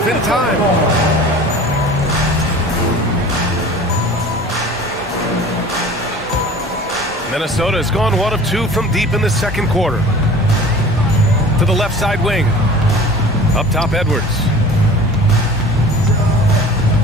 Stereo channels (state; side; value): normal; both; correlation 0.42